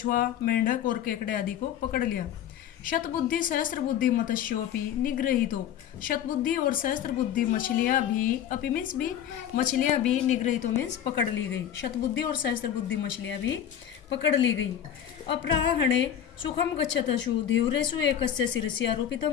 मेंढक और केकड़े आदि को पकड़ लिया। शतबुद्धि सहस्त्र बुद्धि मत्स्योपि निगृहीतो, शतबुद्धि और सहस्त्र बुद्धि मछलियाँ भी, अपि मीन्स भी, मछलियाँ भी, निगृहीतो मीन्स पकड़ ली गई, शतबुद्धि और सहस्त्र बुद्धि मछलियाँ भी पकड़ ली गई। अपराह्णे सुखम गच्छतशु धीव्रेषु एकस्य शिरसि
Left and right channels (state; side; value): quieter; right; 9.9 dB